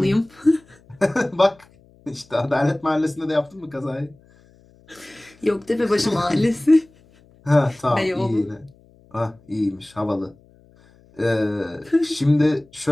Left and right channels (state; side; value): noise; left; hum, 29 dB below the sound